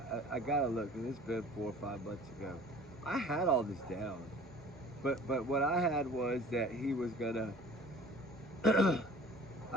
I gotta look, and it's been 4 or 5 months ago. I had all this down. But what I had was that he was gonna,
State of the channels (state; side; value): normal; both; correlation 0.46